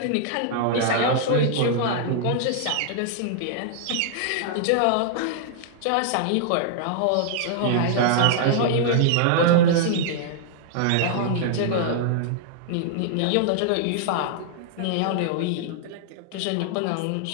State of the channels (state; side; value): different; both; correlation -0.01